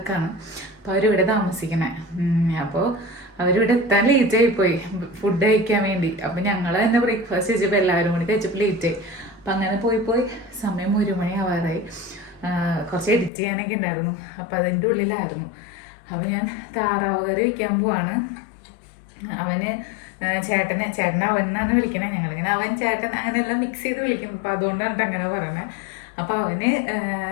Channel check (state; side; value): drops out; right; at 13.3 s